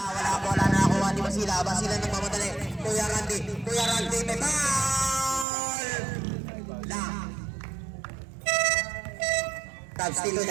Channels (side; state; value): left; drops out; at 5.5 s